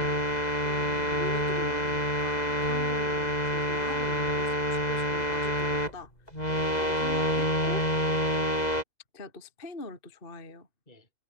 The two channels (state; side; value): late; right; 2.0 ms